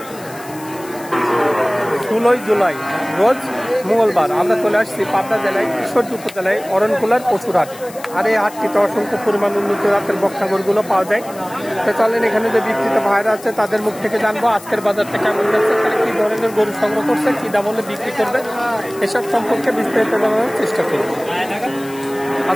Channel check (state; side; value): noise; left; hiss, 19 dB below the sound